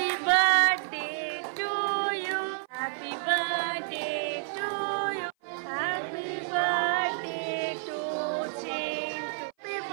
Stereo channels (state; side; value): silent; left; 55 dB below the other